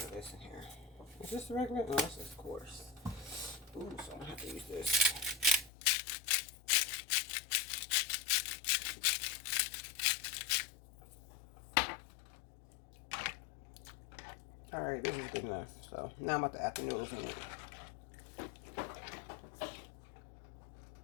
of this in here. Is this the regular? No, this is coarse. Ooh, so I'm gonna have to use this. All right, this is good enough. So now I'm about to add the noodles in it.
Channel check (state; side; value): drops out; right; at 5.7 s